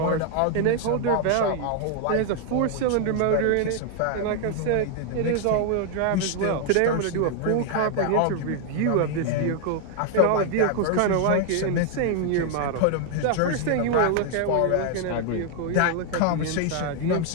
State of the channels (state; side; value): different; both; correlation 0.00